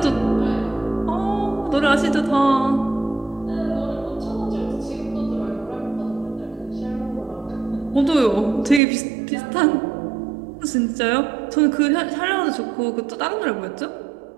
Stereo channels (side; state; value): left; drops out; at 8.8 s